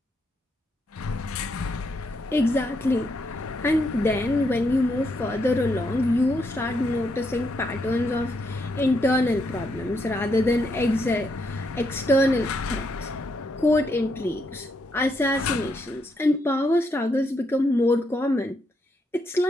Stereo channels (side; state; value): both; normal; correlation 0.78